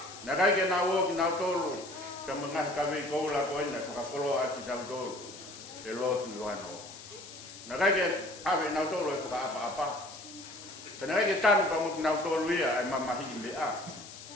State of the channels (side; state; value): left; noise; hiss, 15 dB below the sound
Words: Na kai ke na wo ki na tol ka mangah ka we ko la ko na ka polo ati tau tol. E lo tu ano. Na kai ke ave na tol ko apa. Kana kai ke tan ka mo na tol ia ai mama hi me a.